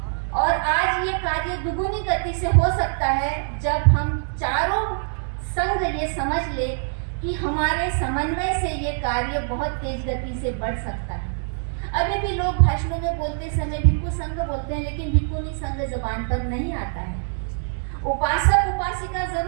और आज ये कार्य दुगुनी गति से हो सकता है जब हम चारों संघ ये समझ ले कि हमारे समन्वय से ये कार्य बहुत तेज गति से बढ़ सकता है। अभी भी लोग भाषणों में बोलते समय भिक्खु संघ बोलते हैं, लेकिन भिक्खुनी संघ जबान पर नहीं आता है। उपासक उपासिका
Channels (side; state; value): left; silent; digital silence